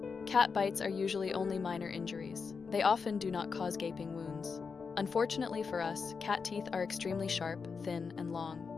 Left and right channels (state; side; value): quieter; right; 5.3 dB